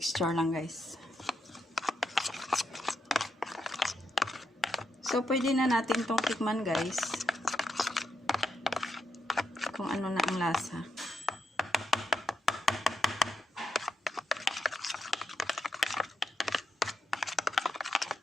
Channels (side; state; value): both; normal; correlation 0.82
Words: lang, guys. So, pwede na natin itong tikman guys. Kung ano na ang lasa.